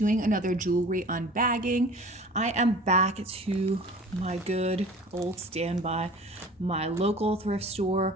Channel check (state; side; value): normal; both; correlation 0.43